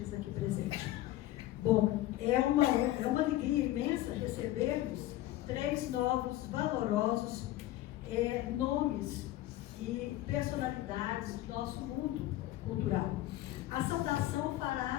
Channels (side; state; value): right; quieter; 15.3 dB